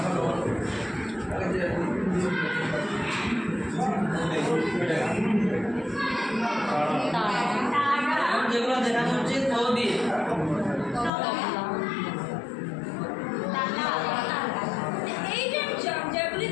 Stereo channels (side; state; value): right; drops out; at 11.1 s